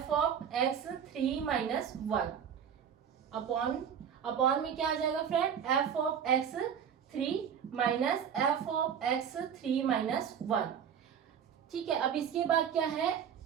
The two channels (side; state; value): left; quieter; 8.0 dB